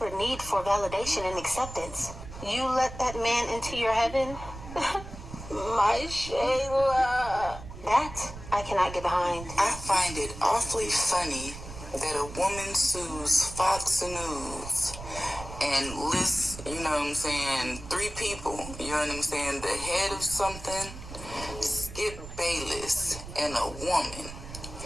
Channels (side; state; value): right; noise; rumble, 12 dB below the sound